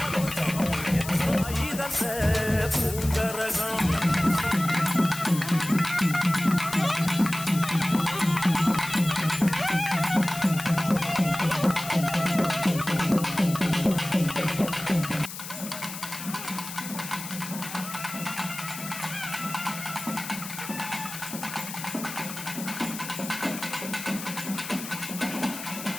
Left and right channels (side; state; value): left; noise; hiss, 10 dB below the sound